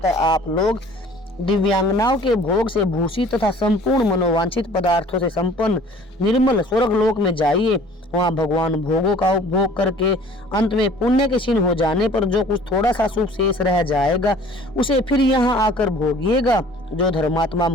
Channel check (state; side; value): normal; both; correlation 0.50